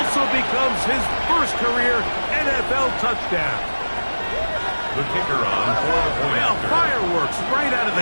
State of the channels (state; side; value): inverted; both; correlation -1.00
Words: becomes his first career NFL touchdown. The kicker on for the point. Well, fireworks right out of